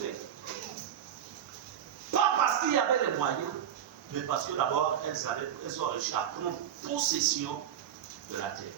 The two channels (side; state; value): left; quieter; 9.8 dB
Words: Pas parce qu'il y avait les moyens, mais parce que d'abord, elles ont réussi à prendre possession de la terre.